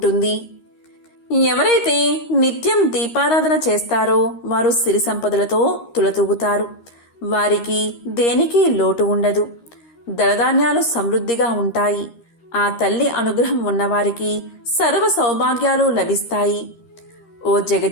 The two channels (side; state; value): right; late; 13 ms